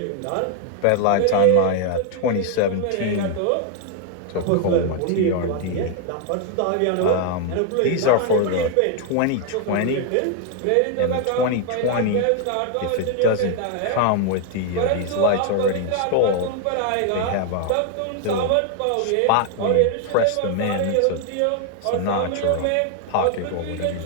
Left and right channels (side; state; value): both; different; correlation 0.00